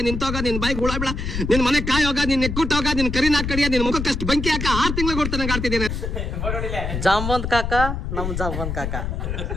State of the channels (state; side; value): noise; left; rumble, 3 dB below the sound